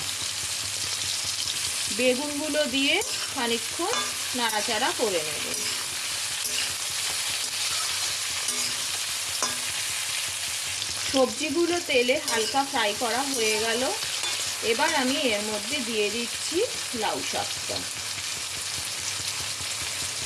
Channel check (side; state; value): both; identical; correlation 1.00